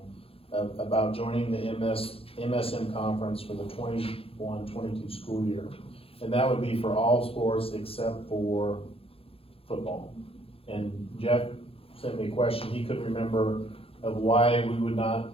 about joining the MSM conference for the 21-22 school year. And that would be for all sports except for football. And Jeff sent me a question, he couldn't remember of why we would not,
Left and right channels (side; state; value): right; late; 0.27 ms